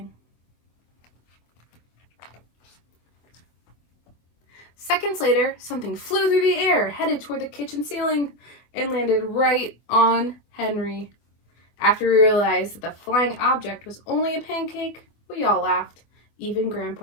Seconds later, something flew through the air, headed toward the kitchen ceiling, and landed right on Henry. After we realized that the flying object was only a pancake, we all laughed, even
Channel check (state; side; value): late; right; 25 ms